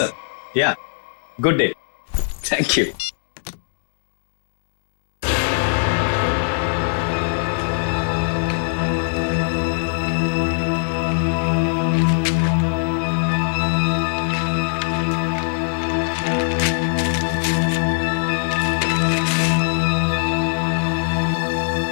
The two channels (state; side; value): silent; right; digital silence